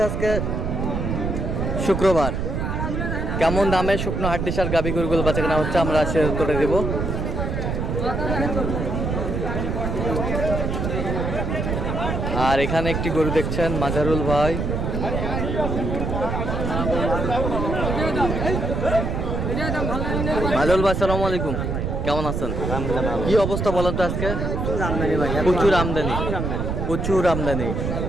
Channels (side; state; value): right; noise; rumble, 1 dB below the sound